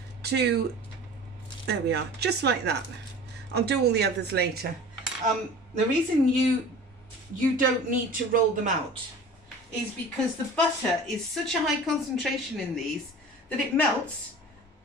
to, there we are, just like that. I'll do all the others later. The reason you don't need to roll them out is because the butter is such a high concentration in these that it melts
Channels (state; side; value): normal; both; correlation 0.40